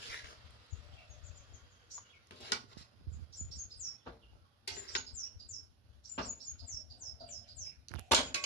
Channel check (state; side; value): normal; both; correlation 0.10